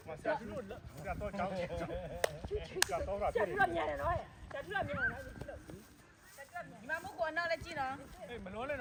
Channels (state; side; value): identical; both; correlation 1.00